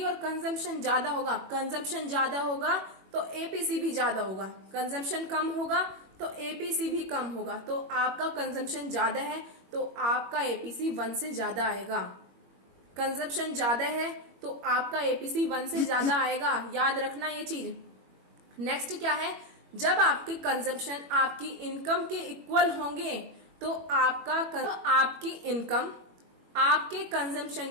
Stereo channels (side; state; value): left; late; 21 ms